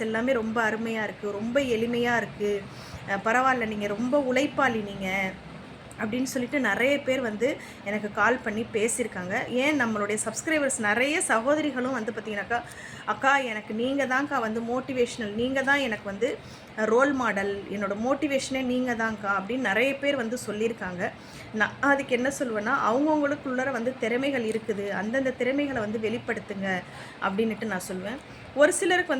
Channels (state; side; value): identical; both; correlation 1.00